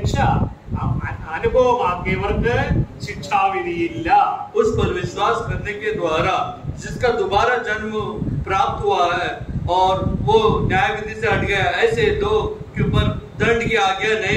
അനുഭവമാക്കിയവർക്ക് ശിക്ഷാവിധിയില്ല. उस पर विश्वास करने के द्वारा जिसका दोबारा जन्म प्राप्त हुआ है और वो न्याय विधि से हट गया, ऐसे लोग के ऊपर दंड की आज्ञा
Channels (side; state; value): both; identical; correlation 1.00